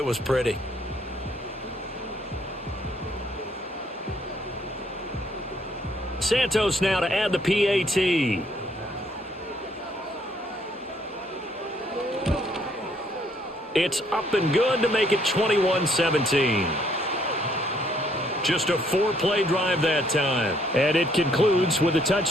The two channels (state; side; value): normal; both; correlation 0.67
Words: was pretty. Santos now to add the PAT. It's up and good to make it 21-17. Just a 4-play drive that time. And it concludes with a